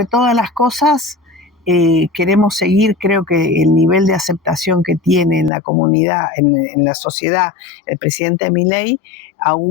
todas las cosas queremos seguir. Creo que el nivel de aceptación que tiene en la comunidad, en la sociedad, el presidente Milei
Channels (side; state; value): right; drops out; at 5.5 s